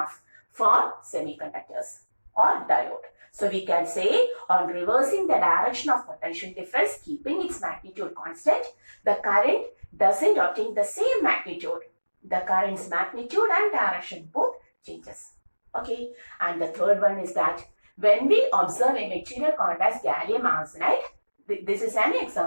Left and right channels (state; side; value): inverted; both; correlation -1.00